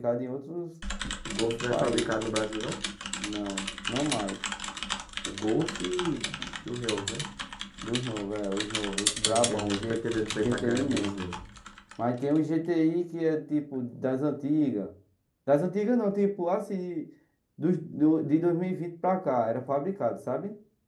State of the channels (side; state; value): both; identical; correlation 1.00